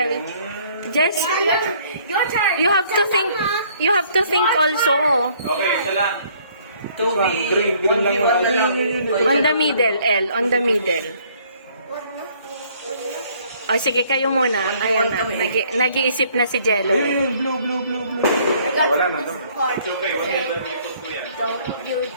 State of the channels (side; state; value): both; inverted; correlation -0.61